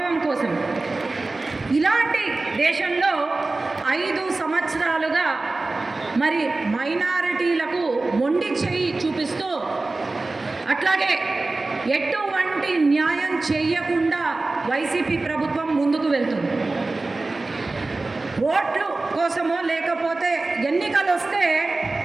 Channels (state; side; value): quieter; left; 3.3 dB